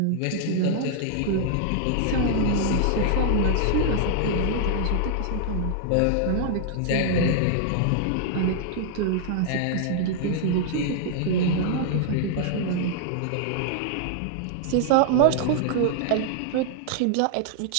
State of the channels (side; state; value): both; different; correlation -0.01